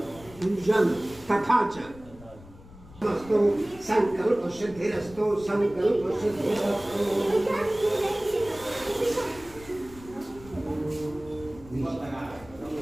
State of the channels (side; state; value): left; noise; rumble, 20 dB below the sound